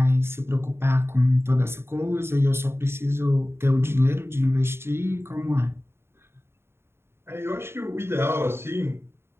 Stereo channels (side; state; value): left; late; 0.12 ms